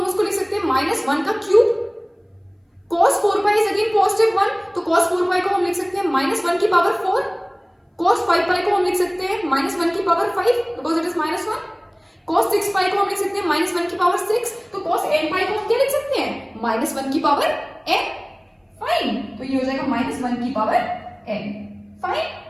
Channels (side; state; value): both; identical; correlation 1.00